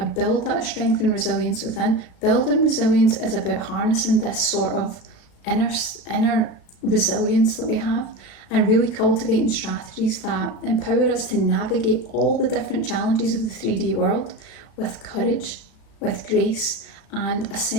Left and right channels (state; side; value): late; right; 35 ms